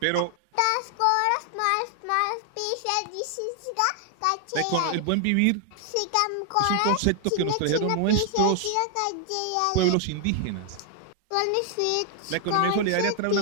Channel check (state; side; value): different; both; correlation 0.00